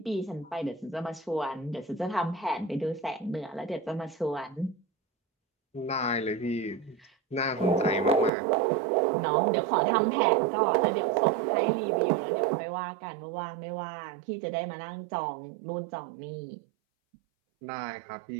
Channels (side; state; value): left; drops out; at 8.3 s